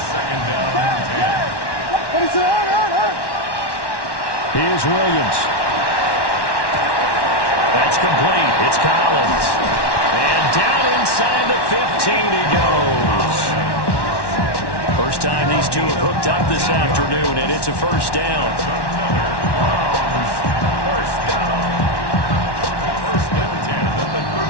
2nd down and 10. Here's Williams. That's complete. It's Collins. And down inside the 15 he goes. first time these two have hooked up this afternoon, and it's a first down. First down. First and 10 at the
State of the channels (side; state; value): right; late; 1.1 ms